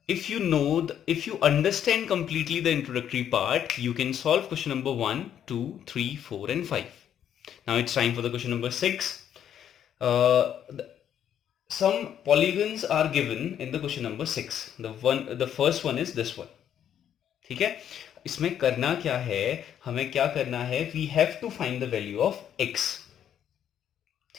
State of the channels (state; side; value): quieter; right; 9.7 dB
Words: if you understand completely the introductory part, you can solve question number 1, 2, 3, 4 and 5. Now it's time for the question number 6. Some polygons are given in the question number 6. The first one is this one. ठीक है, इसमें करना क्या है, हमें क्या करना है, we have to find the value of x.